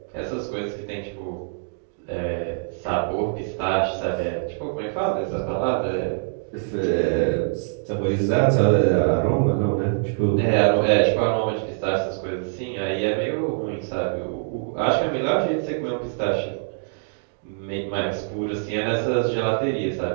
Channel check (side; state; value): left; silent; digital silence